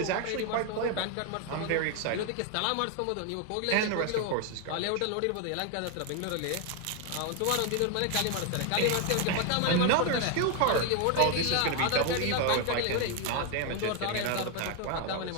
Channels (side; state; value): both; different; correlation 0.01